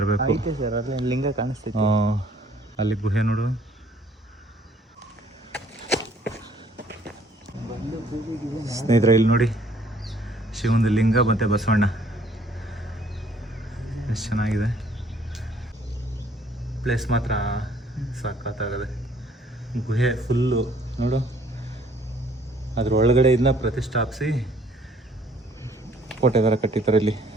ಸರ್. ಅಲ್ಲಿ ಲಿಂಗ ಕಾಣಿಸ್ತೈತೆ. ಅಲ್ಲಿ ಗುಹೆ ನೋಡು. ಸ್ನೇಹಿತರೆ, ಇಲ್ಲಿ ನೋಡಿ, ಶಿವನ ಲಿಂಗ ಮತ್ತು ಬಸವಣ್ಣ ಎಷ್ಟು ಚೆನ್ನಾಗಿದೆ. ಪ್ಲೇಸ್ ಮಾತ್ರ ಸಖತ್ತಾಗದೆ. ಗುಹೆ ಫುಲ್ಲು ನೋಡು, ಅದ್ರ ಒಳಗಡೆ ಇದನ್ನ ಪ್ರತಿಷ್ಠಾಪಿಸಿ ಕೋಟೆ ಥರ ಕಟ್ಟಿದ್ದಾರೆ ಇಲ್ಲಿ.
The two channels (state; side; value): normal; both; correlation 0.60